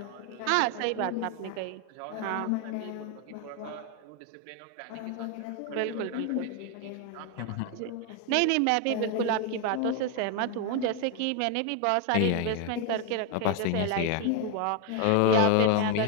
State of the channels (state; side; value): different; both; correlation 0.01